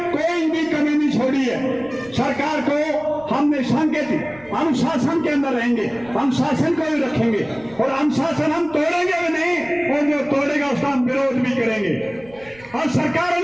कोई भी कमी नहीं छोड़ी है। सरकार को हमने संकेत अनुशासन के अंदर रहेंगे, अनुशासन को भी रखेंगे और अनुशासन हम तोड़ेंगे भी नहीं, और जो तोड़ेगा उसका हम विरोध भी करेंगे। और सरकार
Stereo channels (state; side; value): noise; right; rumble, 25 dB below the sound